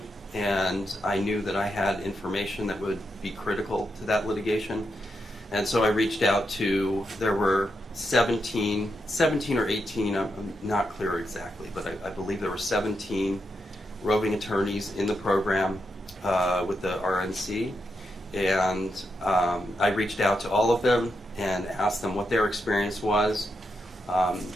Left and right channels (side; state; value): both; normal; correlation 0.84